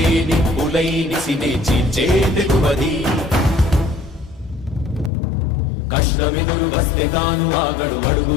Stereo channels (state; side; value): drops out; right; at 5.1 s